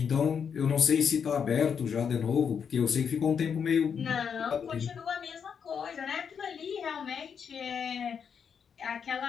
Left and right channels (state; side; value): quieter; right; 7.0 dB